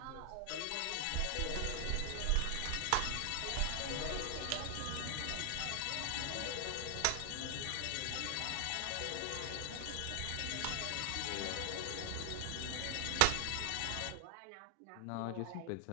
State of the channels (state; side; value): different; both; correlation 0.00